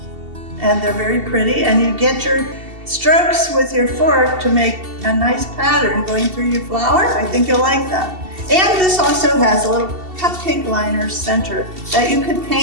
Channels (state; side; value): late; left; 2.7 ms